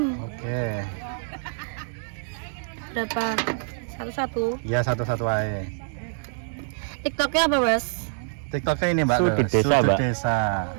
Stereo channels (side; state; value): left; silent; digital silence